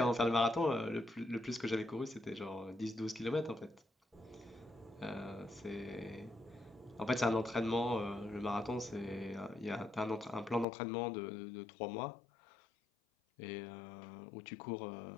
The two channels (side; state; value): right; drops out; at 10.7 s